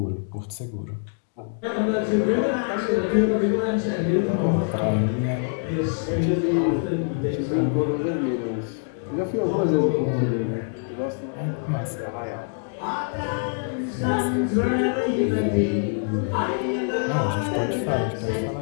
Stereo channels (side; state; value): right; silent; 62 dB below the other